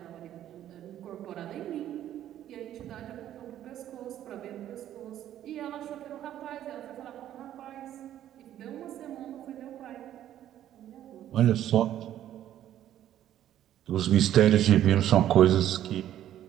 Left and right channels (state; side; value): quieter; left; 11.7 dB